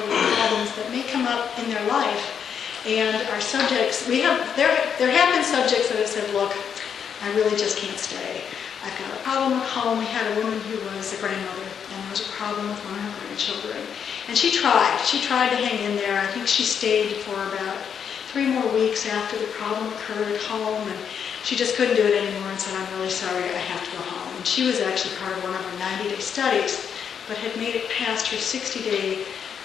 problems that may come up in their life. And our subjects, there have been subjects that have said, look, I really just can't stay. I've got a problem at home. We had a woman who was a grandmother, and there was a problem with one of her grandchildren. And she tried to hang in there. I think she stayed for about 3 more weeks after the problem occurred at home, and she just couldn't do it anymore and said, I'm really sorry, I have to go home. And she was actually part of one of our 90-day studies, but had made it past her 60-day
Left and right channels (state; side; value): quieter; right; 7.6 dB